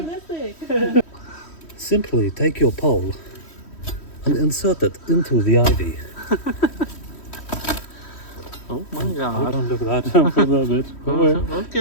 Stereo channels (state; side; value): late; right; 3.1 ms